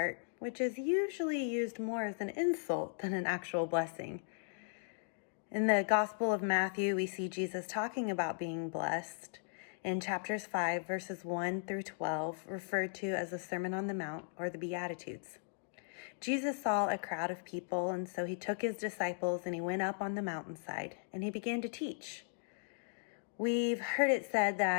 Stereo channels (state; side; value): silent; right; digital silence